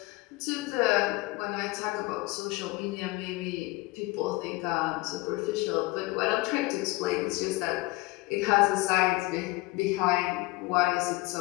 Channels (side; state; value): right; quieter; 22.1 dB